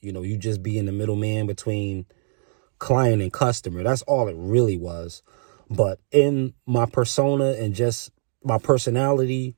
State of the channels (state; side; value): silent; left; digital silence